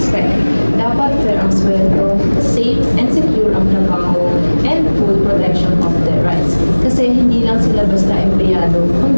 Dapat fair ang sweldo, safe and secure ang trabaho, and full protection of their rights. Kasi hindi lang sila basta empleyado,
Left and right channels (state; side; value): inverted; both; correlation -1.00